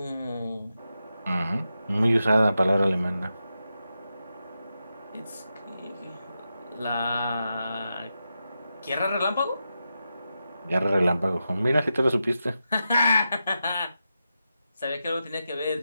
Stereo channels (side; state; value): both; inverted; correlation -0.89